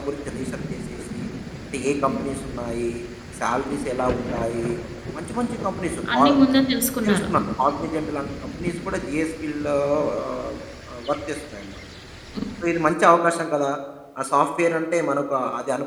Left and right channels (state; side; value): identical; both; correlation 1.00